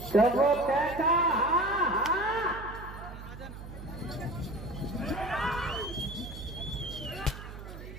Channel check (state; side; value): noise; right; hum, 12 dB below the sound